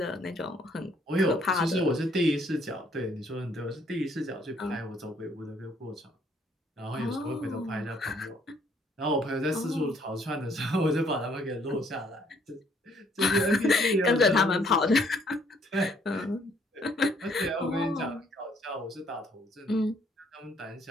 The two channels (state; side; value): normal; both; correlation 0.65